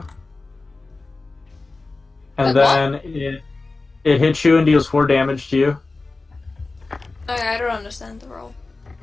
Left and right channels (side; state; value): right; quieter; 3.5 dB